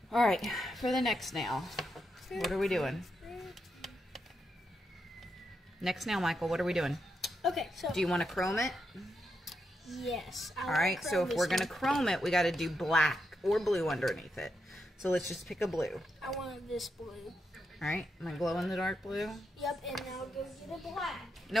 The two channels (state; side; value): normal; both; correlation 0.83